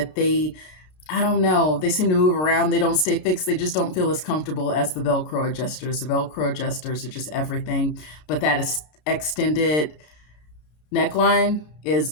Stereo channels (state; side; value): late; right; 33 ms